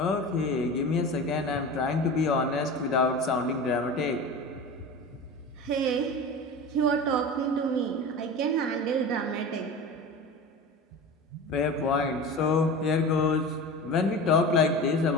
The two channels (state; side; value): normal; both; correlation 0.31